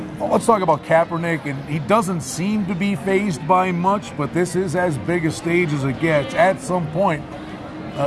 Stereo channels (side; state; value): both; identical; correlation 1.00